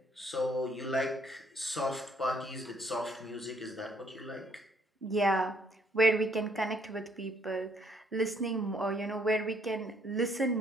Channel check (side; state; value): both; normal; correlation 0.66